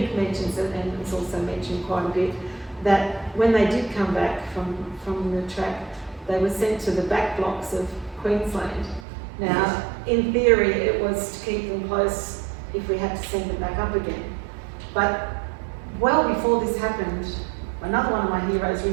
mentions it, and it's also mentioned quite a bit, that when they did come back from the track, they were sent to the back blocks of Queensland. Now, in theory, it was to keep them close if we had to send them back up again. But well before this happened, another one of my heroes,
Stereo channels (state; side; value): drops out; left; at 9.1 s